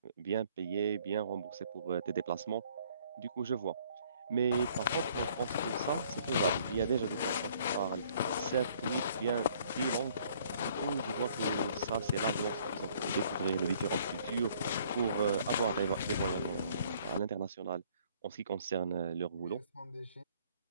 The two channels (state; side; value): inverted; both; correlation -0.60